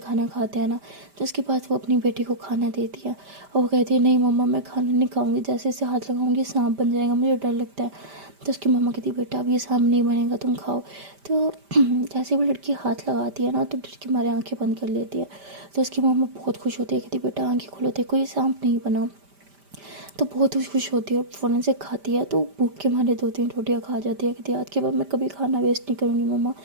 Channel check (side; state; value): left; late; 5.1 ms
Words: खाते हैं ना तो उसके बाद वो अपनी बेटी को खाना देती है और वो कहती है नहीं मम्मा मैं खाना नहीं खाऊंगी, जैसे इसे हाथ लगाऊंगी सांप बन जाएगा, मुझे डर लगता है। तो उसकी मम्मा कहती बेटा अब ये सांप नहीं बनेगा, तुम खाओ। तो जैसे वो लड़की हाथ लगाती है ना तो डर के मारे आंखें बंद कर लेती है। तो उसकी मम्मा बहुत खुश होती है, कहती बेटा आंखें खोलो, देखो ये सांप नहीं बना। तो बहुत खुश होती है और फ़ौरन से खाती है। तो भूख के मारे 2-3 रोटियाँ खा जाती है, कहती है आज के बाद मैं कभी खाना वेस्ट नहीं करूँगी मम्मा,